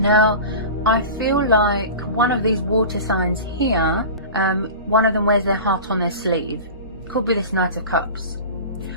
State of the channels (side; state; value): both; inverted; correlation -0.33